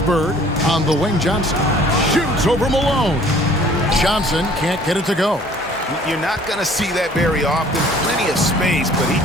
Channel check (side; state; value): both; normal; correlation 0.54